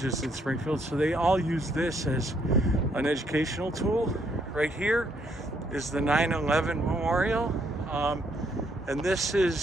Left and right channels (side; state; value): both; normal; correlation 0.71